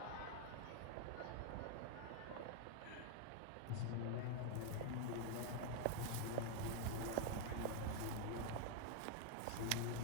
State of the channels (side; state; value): both; different; correlation 0.01